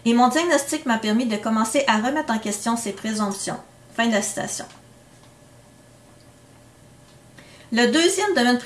Et mon diagnostic m'a permis de commencer à remettre en question ces présomptions. » Fin de la citation. Le deuxième domaine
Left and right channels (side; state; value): both; identical; correlation 1.00